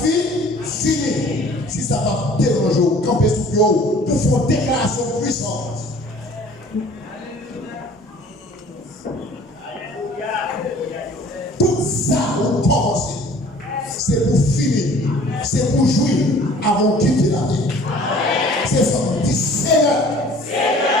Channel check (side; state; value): both; normal; correlation 0.50